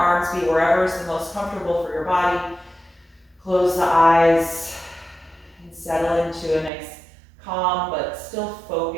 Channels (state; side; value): drops out; left; at 6.7 s